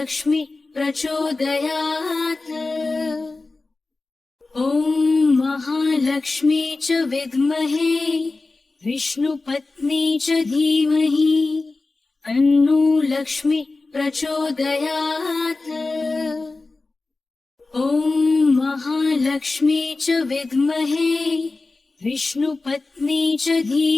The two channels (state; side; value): quieter; right; 3.5 dB